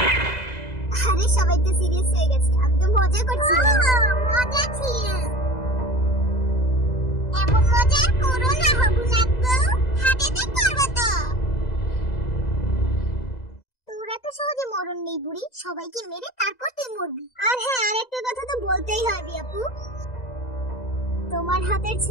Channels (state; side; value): late; right; 2.0 ms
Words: আরে সবাই তো সিরিয়াস হয়ে গেছে, আমি তো মজা করছিলাম। মজা ছিল। এমন মজা করো না হবু নাকবো, হাতেতে করবো তো। তোরা তো সহজে মরণ নেই বুড়ি, সবাইকে মেরে তারপর তুই মরবি। আর হ্যাঁ, আরেকটা কথা তো বলতেই হয় বিয়াপু, তোমার হাতের